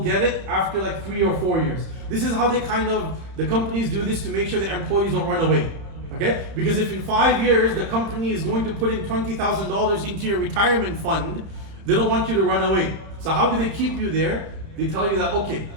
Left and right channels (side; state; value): left; late; 31 ms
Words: get it after like 3 or 4 years. This is how the companies do this to make sure the employees don't run away. Okay? Because if in 5 years the company is going to put in $20,000 into your retirement fund, they don't want you to run away. So how do they keep you there? They tell you that, okay,